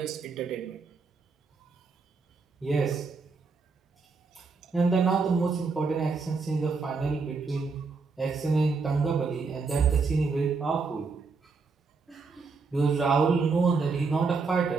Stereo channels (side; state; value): left; quieter; 4.6 dB